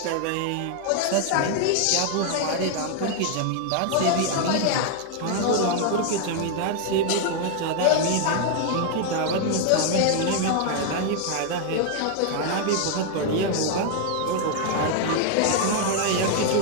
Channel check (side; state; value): both; different; correlation 0.00